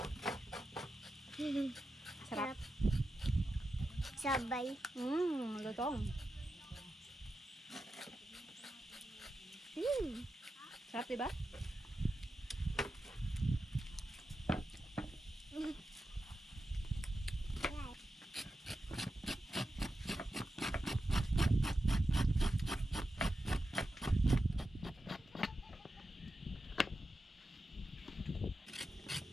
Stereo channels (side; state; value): both; normal; correlation 0.90